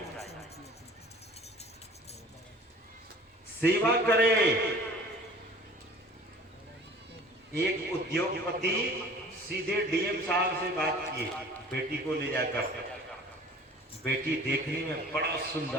सेवा करे। एक उद्योगपति सीधे डीएम साहब से बात किए बेटी को ले जाकर। बेटी देखने में बड़ा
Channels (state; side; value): normal; both; correlation 0.46